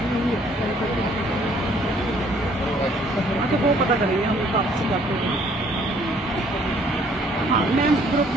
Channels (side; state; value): both; normal; correlation 0.61